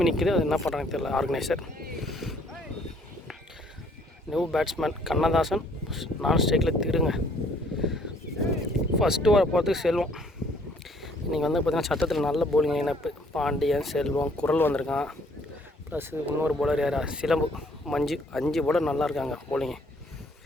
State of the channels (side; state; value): both; normal; correlation 0.62